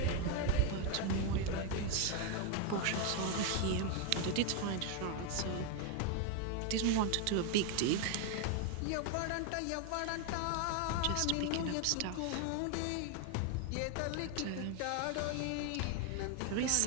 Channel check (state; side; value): different; both; correlation 0.01